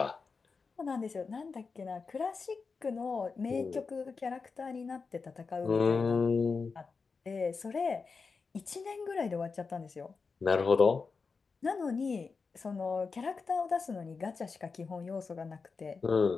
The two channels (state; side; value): quieter; right; 4.8 dB